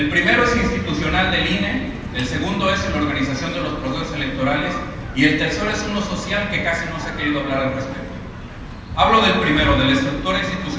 primero es institucional del INE, el segundo es en la organización de los procesos electorales y el tercero es uno social que casi no se ha querido hablar al respecto. Hablo del primero, de la estructura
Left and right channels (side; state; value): both; identical; correlation 1.00